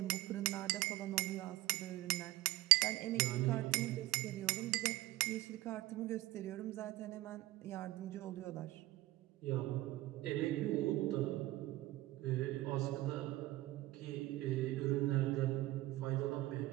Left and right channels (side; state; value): left; quieter; 17.7 dB